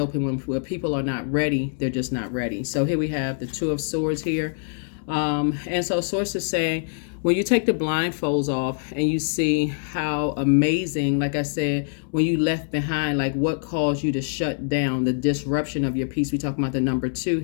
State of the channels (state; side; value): silent; right; digital silence